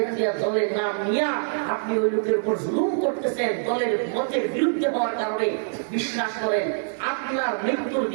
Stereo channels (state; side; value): silent; left; digital silence